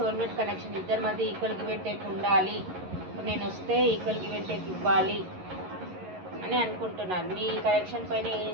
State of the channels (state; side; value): late; left; 11 ms